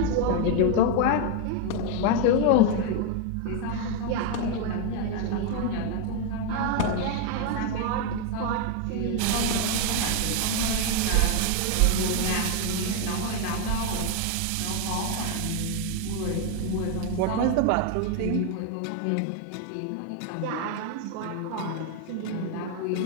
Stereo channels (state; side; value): different; both; correlation 0.01